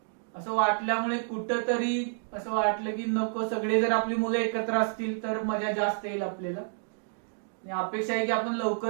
असं वाटल्यामुळे कुठंतरी असं वाटलं की नको, सगळे जर आपली मुलं एकत्र असतील तर मजा जास्त येईल आपल्याला. अपेक्षा आहे की आपण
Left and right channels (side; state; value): left; silent; digital silence